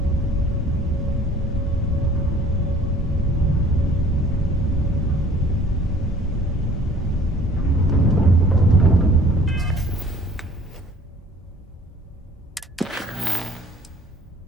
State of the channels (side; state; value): both; normal; correlation 0.53